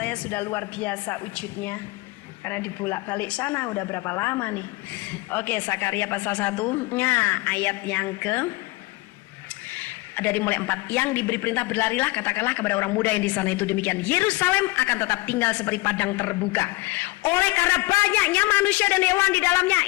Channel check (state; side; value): quieter; right; 21.9 dB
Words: sudah luar biasa wujudnya. Karena dibolak-balik sana udah berapa lama nih. Oke, Zakaria pasal 1-nya ayat yang ke dari mulai 4, yang diberi perintah berlarilah, katakanlah kepada orang muda yang di sana itu demikian, Yerusalem akan tetap tinggal seperti padang terbuka oleh karena banyaknya manusia dan hewan di dalamnya.